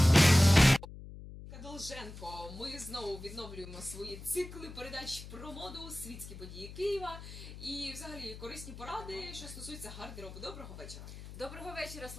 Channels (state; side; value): noise; left; hum, 13 dB below the sound